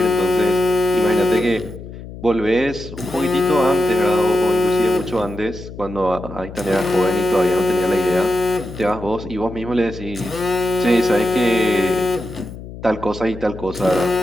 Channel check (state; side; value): noise; left; hum, 13 dB below the sound